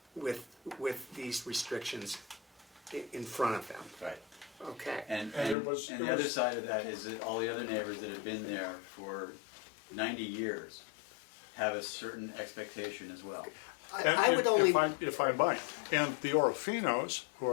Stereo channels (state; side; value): drops out; right; at 5.6 s